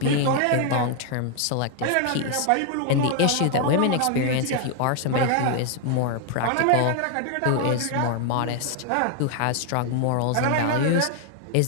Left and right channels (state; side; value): different; both; correlation 0.00